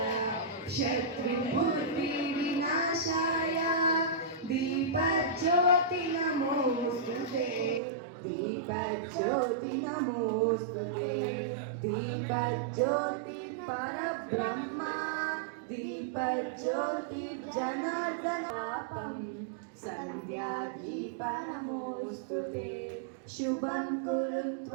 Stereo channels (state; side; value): drops out; left; at 7.8 s